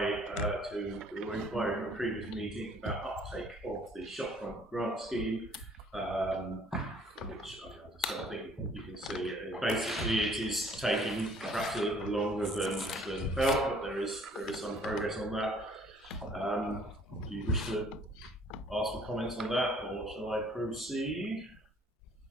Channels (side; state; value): both; normal; correlation 0.58